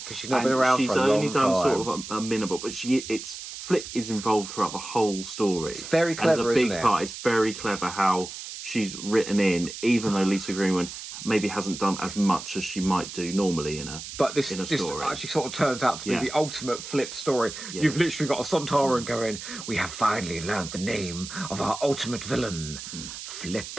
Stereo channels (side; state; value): right; noise; hiss, 10 dB below the sound